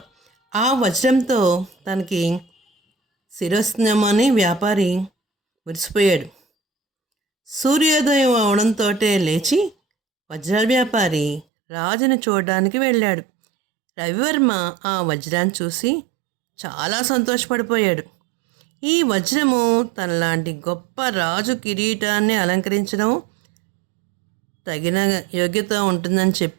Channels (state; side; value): drops out; left; at 11.5 s